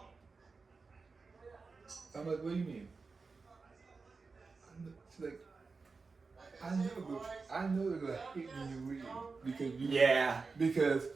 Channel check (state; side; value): quieter; left; 4.4 dB